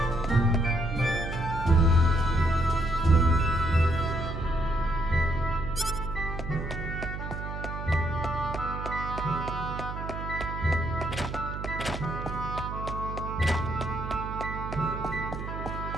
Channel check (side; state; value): right; noise; hum, 6 dB below the sound